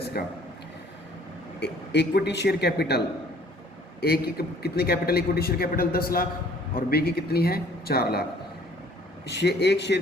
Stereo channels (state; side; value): normal; both; correlation 0.56